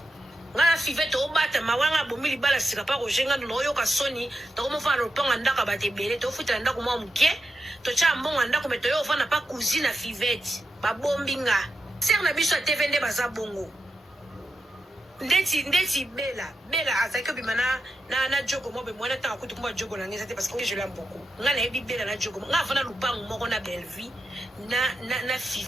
ngala five to bata mawanga bomili bala sika pa rojenga no yo ka soni to ko mo fana lupango ndaka batebele to futa ndako mo mke to cha mbongo ndako meto yo fana pa cousine Fivette ba bombinga ser na biso TV nde baza bongo ndeti bela azaki bimana na jogo mo be mwana ta kutu kumba jogo na ngeza te parce que je l'aime beaucoup ngana ebi bela na jogo nga fana lupango moko na Belleville na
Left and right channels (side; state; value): both; normal; correlation 0.88